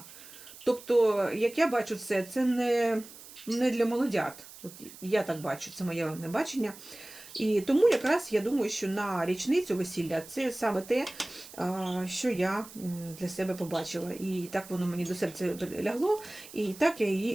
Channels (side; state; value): right; noise; hiss, 17 dB below the sound